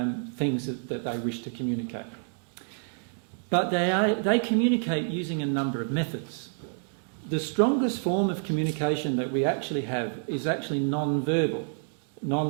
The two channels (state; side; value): silent; left; digital silence